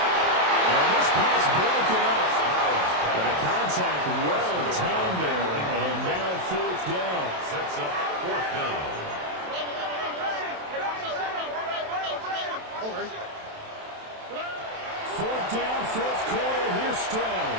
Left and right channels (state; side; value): late; left; 27 ms